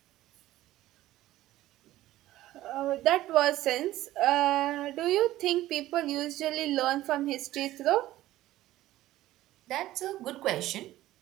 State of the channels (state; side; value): quieter; left; 15.3 dB